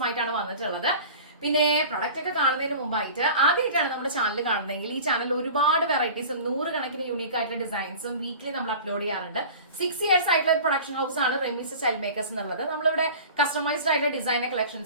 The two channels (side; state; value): both; inverted; correlation -0.39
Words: വന്നിട്ടുള്ളത്. പിന്നെ പ്രൊഡക്റ്റ് ഒക്കെ കാണുന്നതിന് മുമ്പായിട്ട് ആദ്യമായിട്ടാണ് നമ്മുടെ ചാനൽ കാണുന്നതെങ്കിൽ ഈ ചാനൽ ഒരുപാട് വെറൈറ്റീസും 100 കണക്കിന് യൂണീക്ക് ആയിട്ടുള്ള ഡിസൈൻസും വീക്ക്ലി നമ്മൾ അപ്ലോഡ് ചെയ്യാറുണ്ട്. 6 ഇയേഴ്സ് ആയിട്ടുള്ള ഒരു പ്രൊഡക്ഷൻ ഹൗസ് ആണ് റെമീസ് സ്റ്റൈൽ മേക്കേഴ്സ് എന്നുള്ളത്. നമ്മളിവിടെ കസ്റ്റമൈസ്ഡ് ആയിട്ടുള്ള ഡിസൈനർ